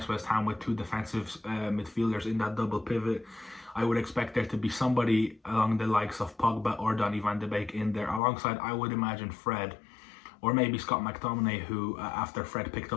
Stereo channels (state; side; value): drops out; right; at 8.2 s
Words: West Ham with 2 defensive midfielders in that double pivot. I would expect there to be somebody along the likes of Pogba or Donny van de Beek in there, alongside, I would imagine, Fred, or maybe Scott McTominay, who, after Fred picked